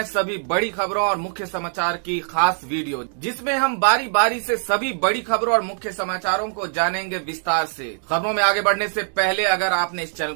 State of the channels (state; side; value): silent; left; digital silence